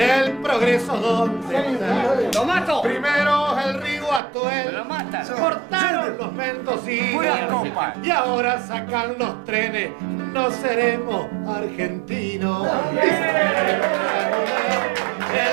progreso dónde está? ¡Lo mato! Primero el río Atuel, ¡Lo mata! cortaron los mendocinos y ahora sacan los trenes. No seremos argentinos.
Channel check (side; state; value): left; drops out; at 4.2 s